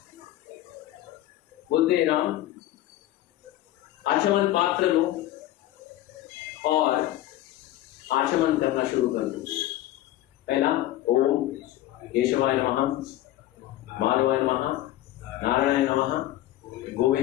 बोलते, राम आचमन पात्र लो और आचमन करना शुरू कर दो। पहला ओम केशवाय नमः, माधवाय नमः, नारायणाय नमः,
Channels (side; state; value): right; quieter; 14.4 dB